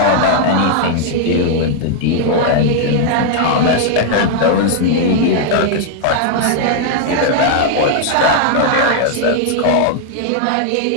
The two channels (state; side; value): different; both; correlation 0.00